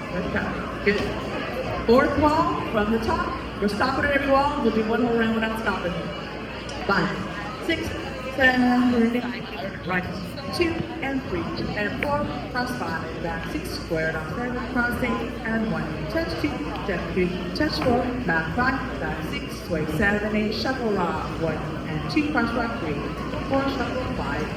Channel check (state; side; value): identical; both; correlation 1.00